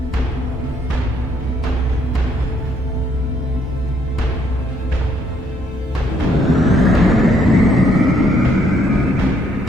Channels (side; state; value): both; normal; correlation 0.69